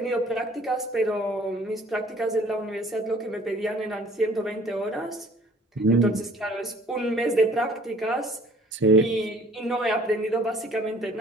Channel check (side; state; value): both; normal; correlation 0.54